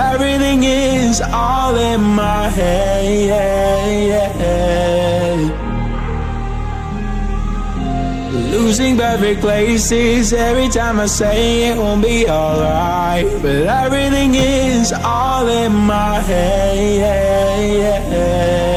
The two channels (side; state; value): both; identical; correlation 1.00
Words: is all in my head. Losing perfect places every time I say it won't be alright, but everything is all in my head.